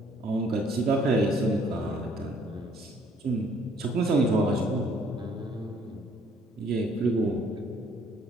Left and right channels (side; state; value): both; normal; correlation 0.62